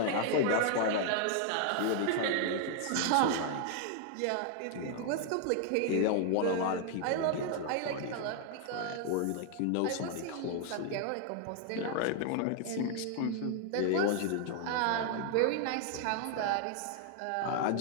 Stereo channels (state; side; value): different; both; correlation 0.00